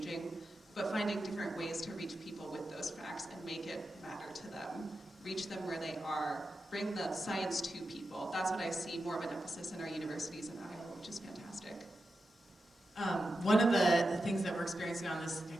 but finding different ways to reach people with those facts and make it matter to them. Reach them where they are. Bring the science to people. That's what I see more of an emphasis in our universities in Iowa, which is fantastic. One of the things that we're experiencing on this,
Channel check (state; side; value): normal; both; correlation 0.90